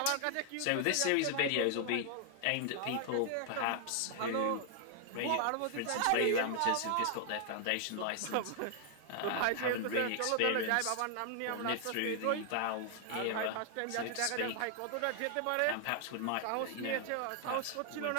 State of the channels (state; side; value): different; both; correlation 0.00